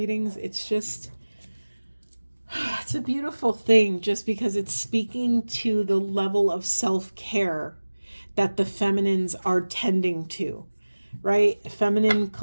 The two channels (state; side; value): inverted; both; correlation -1.00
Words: It's just, it's a beautiful thing, just because it's speaking to the level of self-care that the feminines are tending to, right? Feminine